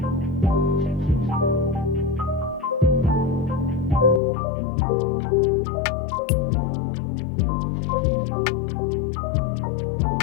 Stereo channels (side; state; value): right; drops out; at 4.2 s